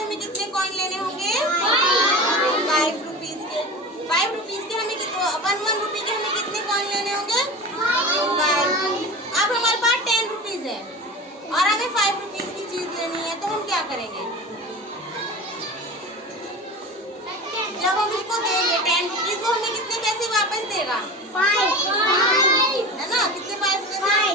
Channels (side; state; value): both; normal; correlation 0.32